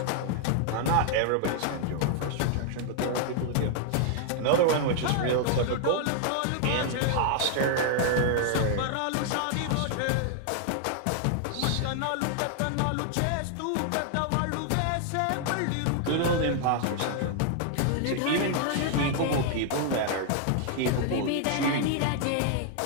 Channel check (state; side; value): different; both; correlation 0.00